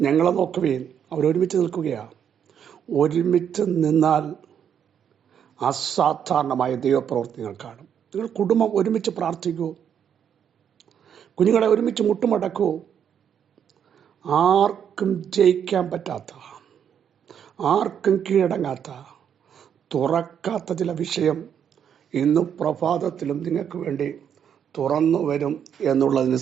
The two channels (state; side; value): quieter; left; 8.5 dB